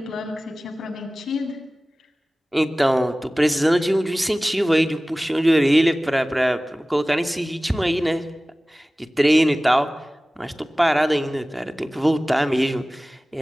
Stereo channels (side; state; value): both; normal; correlation 0.98